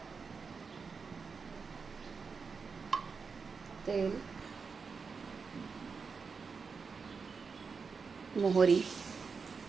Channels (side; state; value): left; quieter; 5.2 dB